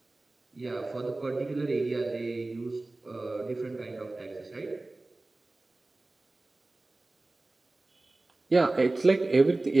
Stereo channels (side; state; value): left; quieter; 3.0 dB